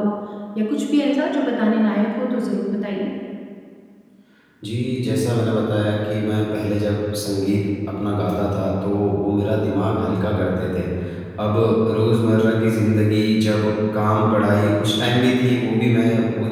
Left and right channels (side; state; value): both; identical; correlation 1.00